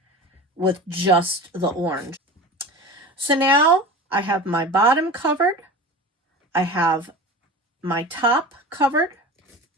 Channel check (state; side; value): normal; both; correlation 0.33